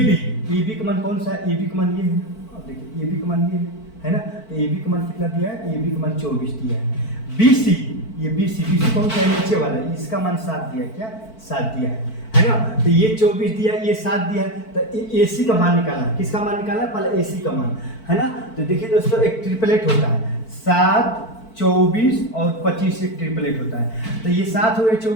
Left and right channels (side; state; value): right; late; 4.5 ms